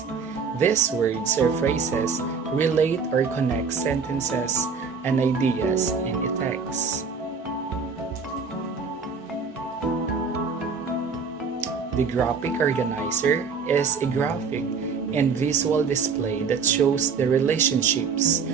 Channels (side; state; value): left; quieter; 5.4 dB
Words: These words or phrases relate or connect sentences and ideas in a text. The graphic organizer is a graphic and visual display that shows the relationships